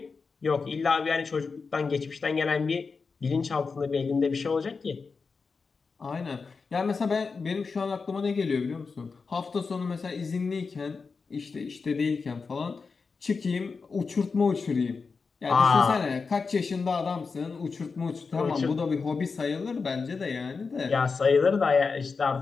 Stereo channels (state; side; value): quieter; right; 4.8 dB